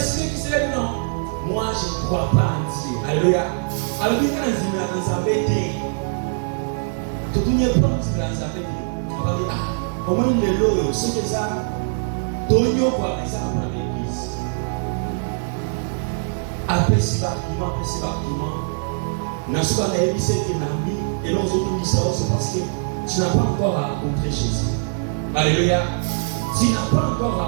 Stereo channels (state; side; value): silent; left; digital silence